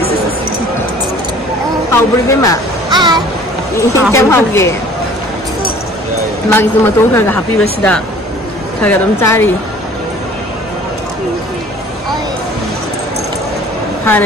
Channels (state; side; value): normal; both; correlation 0.50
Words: xí xí. Hầu bự cái mà. Chém hầu kì. Mà cái mà tôi phải happy birthday. Phải cái đống trái đi.